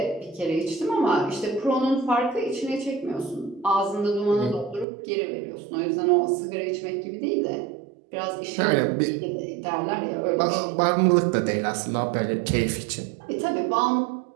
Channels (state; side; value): drops out; left; at 4.9 s